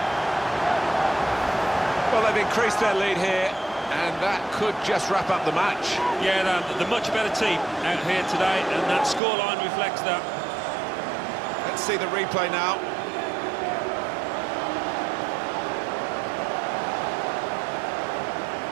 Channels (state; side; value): drops out; left; at 9.2 s